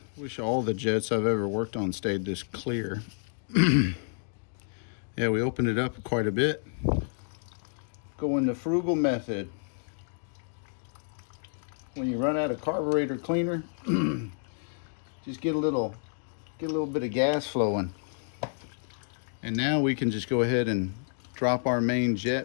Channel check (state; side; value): silent; right; digital silence